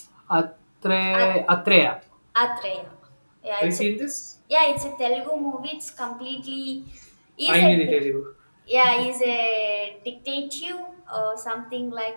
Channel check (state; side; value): inverted; both; correlation -1.00